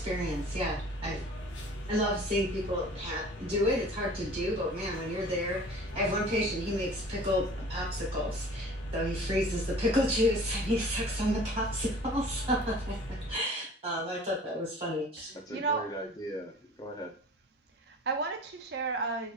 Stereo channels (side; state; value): both; normal; correlation 0.46